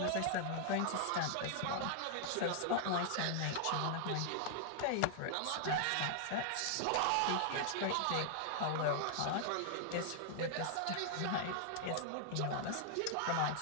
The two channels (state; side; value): different; both; correlation -0.01